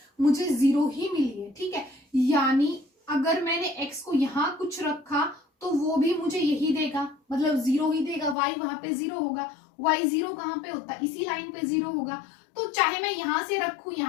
मुझे 0 ही मिली है, ठीक है। यानी अगर मैंने x को यहाँ कुछ रखा तो वो भी मुझे यही देगा, मतलब 0 ही देगा। y वहां पे 0 होगा, y 0 कहाँ पे होता है, इसी लाइन पे 0 होगा। तो चाहे मैं यहां से रखूं,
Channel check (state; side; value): drops out; right; at 8.3 s